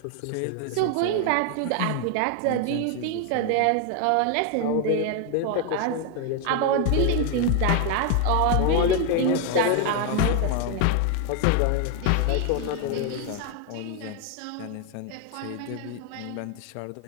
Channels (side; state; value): both; different; correlation 0.00